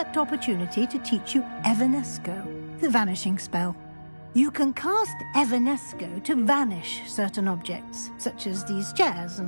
opportunity to teach you Evanesco, the vanishing spell. You can cast Evanesco to vanish certain objects, such as these chairs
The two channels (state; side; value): inverted; both; correlation -1.00